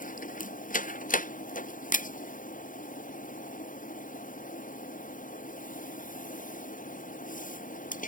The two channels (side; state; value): right; late; 0.39 ms